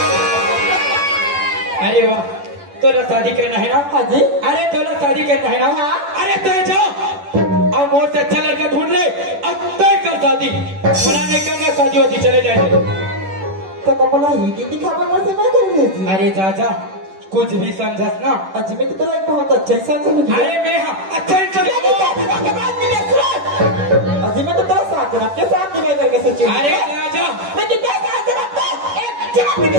अरे वाह, तोला शादी करना है ना? हाँ जी। अरे तोला शादी करना है ना? हाँ। अरे तो जाओ और मोर से अच्छा लड़का ढूंढ ले, अब तय कर शादी। बोला नहीं करना शादी वादी, चले जाएंगे। तो बोला ही दिन दिखावा मुझसे मैं कर रही थी। अरे चाचा कुछ भी समझस ना। अजी में तो तोरा एक बहुत अच्छा इंसान समझ लिया। अरे मैं हाँ अच्छा इंसान। अजी में तो तेरा साथ जनाब के साथ निभाई करके सोची। अरे चाचा लेकिन तेरा साथ जनाब को एक जनाब के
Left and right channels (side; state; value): left; late; 10 ms